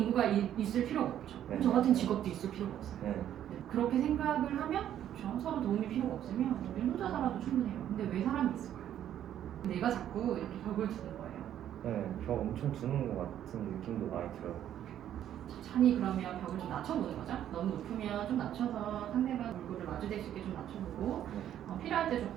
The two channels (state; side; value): quieter; left; 10.9 dB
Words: 인구가 있을 필요가 없죠. 네. 저 같은 직업도 있을 필요가 없어요. 네. 네. 그렇게 생각을 하면 그렇죠? 서로 도움이 필요가 없으면 우리 혼자 살아도 충분해요. 근데 왜 사람이 있을까요? 내가 자꾸 이렇게 벽을 두는 거예요. 네, 벽 엄청 두는 것 같은 느낌도 많이 들어요. 천천히 그러면 벽을 좀 낮춰보는 거죠. 너무 높으면 좀 낮춰서 상대방 얼굴을 마주댈 수 있게 좀 낮춰보고 필요할 때 좀